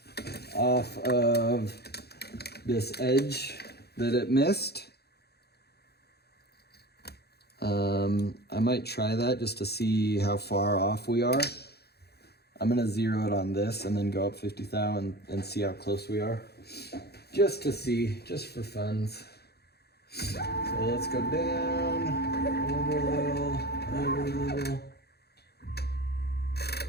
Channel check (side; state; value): right; late; 0.47 ms